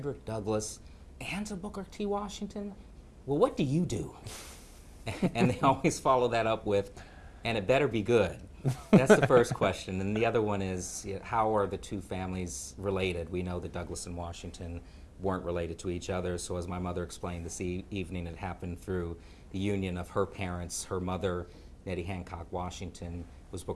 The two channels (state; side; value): identical; both; correlation 1.00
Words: Douglass and to Booker T. Washington? Well, what do you do? And they always follow that up with, and it better be good. That's the first question. And the other one is, how are the two families related? We know that Douglass and Washington weren't related to each other. So as my mother explained this evening, it happened through the union of her parents. Her mother, Nettie Hancock Washington, was